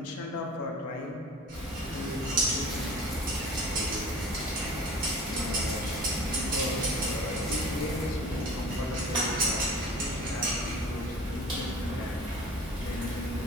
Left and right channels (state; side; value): normal; both; correlation 0.42